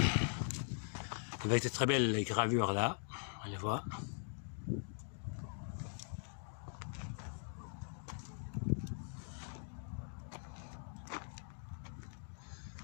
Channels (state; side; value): silent; right; digital silence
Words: Avec de très belles gravures là. On les voit.